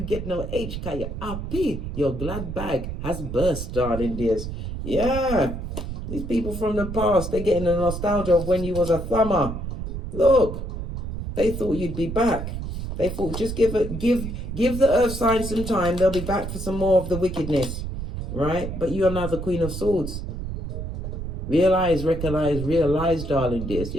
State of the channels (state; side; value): noise; right; rumble, 6 dB below the sound